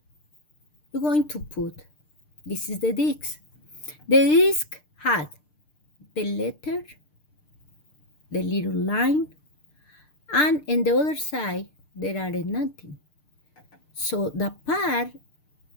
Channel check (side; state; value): right; late; 6.6 ms